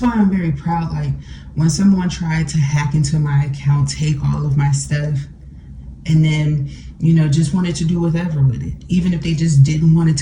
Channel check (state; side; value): identical; both; correlation 1.00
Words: why I'm very proud. Like, when someone tried to hack into my account, take all of my stuff, and then, you know, just wanted to do whatever with it, even if they just didn't want